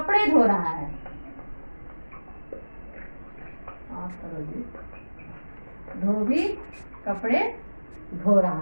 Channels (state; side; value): inverted; both; correlation -1.00